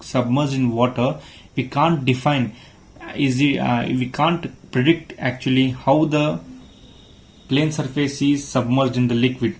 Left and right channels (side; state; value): both; identical; correlation 1.00